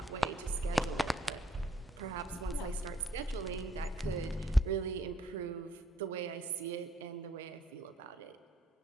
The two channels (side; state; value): both; normal; correlation 0.66